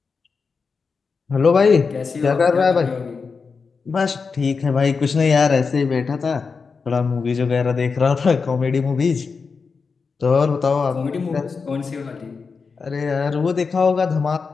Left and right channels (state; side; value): quieter; right; 5.0 dB